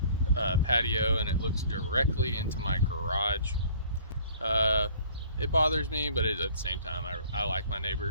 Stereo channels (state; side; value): inverted; both; correlation -0.53